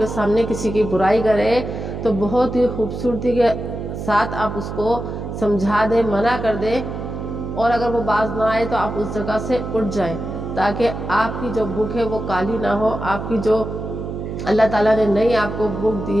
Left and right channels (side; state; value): right; noise; hum, 6 dB below the sound